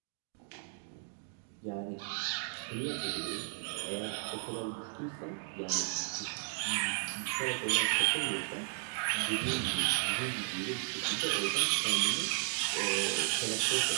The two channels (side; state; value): left; silent; 55 dB below the other